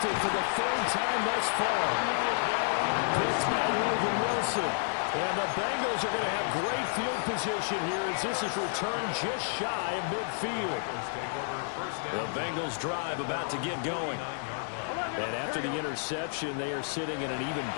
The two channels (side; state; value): right; silent; digital silence